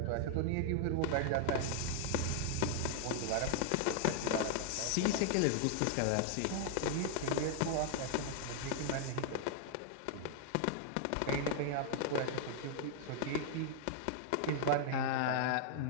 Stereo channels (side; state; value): both; different; correlation 0.00